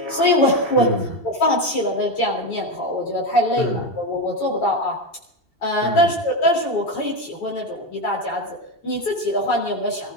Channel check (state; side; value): late; right; 2.7 ms